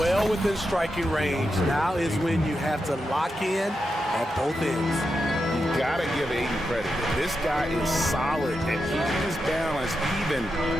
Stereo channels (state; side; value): normal; both; correlation 0.87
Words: within striking range. Now is when you have to lock in at both ends. You gotta give Ayton credit. This guy is solid at keeping his balance even